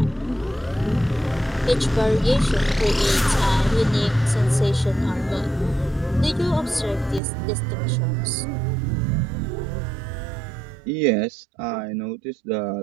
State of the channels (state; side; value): drops out; left; at 7.2 s